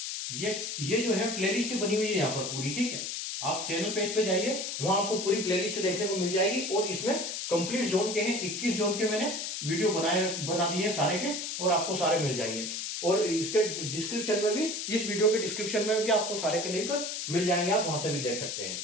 ये जो है प्लेलिस्ट बनी हुई है यहाँ पर पूरी। ठीक है। आप चैनल पेज पे जाइए, वहां आपको पूरी प्लेलिस्ट देखने को मिल जाएगी, और इसमें कंप्लीट जोन के हैं 21 जोन के मैंने वीडियो बना दिए हैं सारे के, और आपको सारे मिल जाएंगे। और इसके डिस्क्रिप्शन में भी, इस वीडियो के डिस्क्रिप्शन में भी आपको सारे के लिंक मिल जाएंगे, आप वहां से भी देख सकते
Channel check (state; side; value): noise; left; hiss, 4 dB below the sound